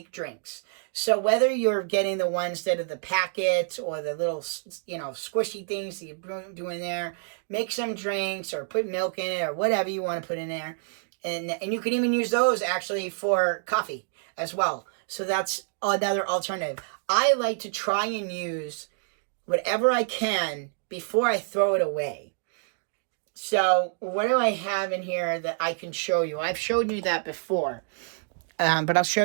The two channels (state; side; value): silent; left; digital silence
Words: drinks. So whether you're getting the ones that are the packets or the little, you know, squishy things that you're doing there, make some drinks or put milk in it or whatever you want to put in there. And you can even use those actually for coffee as well. So that's another alternative. I like to try and use whatever I can before I throw it away. So what do I have in here that I can show you? I've showed you that before, but I'll show